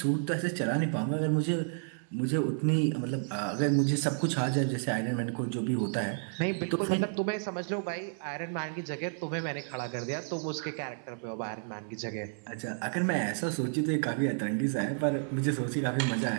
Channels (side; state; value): left; silent; 57 dB below the other